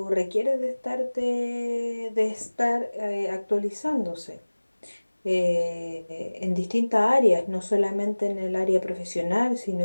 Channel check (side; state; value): both; inverted; correlation -1.00